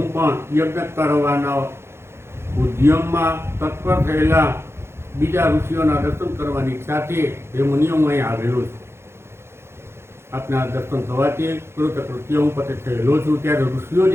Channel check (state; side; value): late; left; 0.12 ms